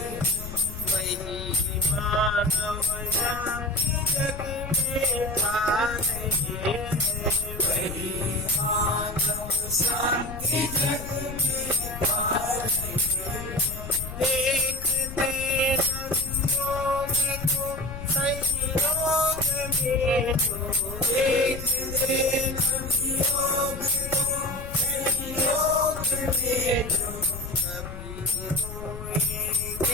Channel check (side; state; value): left; noise; rumble, 10 dB below the sound